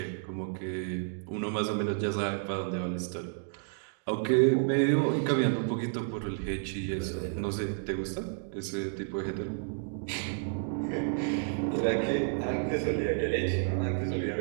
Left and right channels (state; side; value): silent; left; digital silence